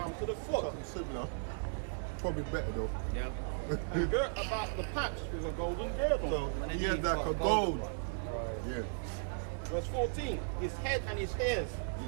to the foot, something similar. Probably better though. Yeah. and girt about the paps with a golden girdle. So he had like a gold. Yeah. Verse 14, his head and his hairs,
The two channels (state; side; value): silent; left; 54 dB below the other